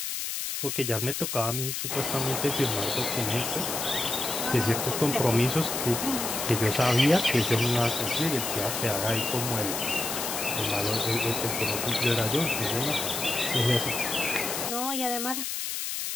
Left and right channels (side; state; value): left; noise; hiss, 3 dB below the sound